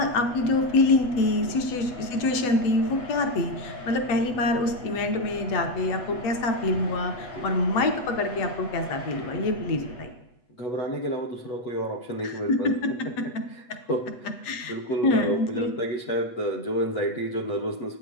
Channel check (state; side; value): late; right; 8.2 ms